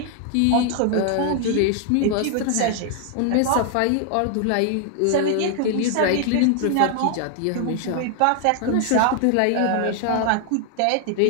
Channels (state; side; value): different; both; correlation 0.00